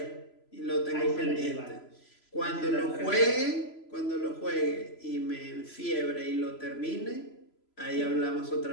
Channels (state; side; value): late; right; 3.0 ms